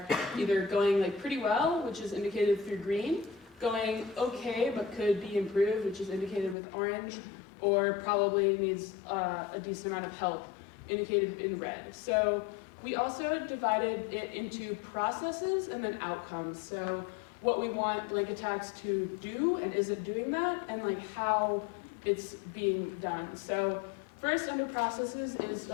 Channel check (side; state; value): right; drops out; at 6.6 s